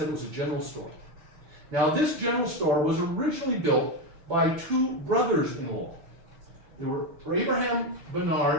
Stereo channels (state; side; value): late; left; 5.5 ms